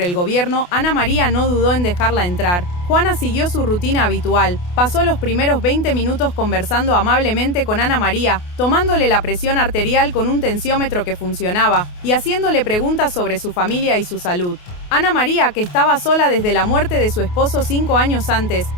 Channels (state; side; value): late; right; 28 ms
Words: el gobierno, Ana María no dudó en dejarla entrar. Juana siguió su rutina habitual. Pasó los primeros 20 minutos conversando amablemente con Ana María, tomándole la presión arterial con un tensiómetro que funcionaba y haciéndole preguntas sobre su familia y su salud. Ana María, que estaba sola desde la muerte de su esposo 5 años antes,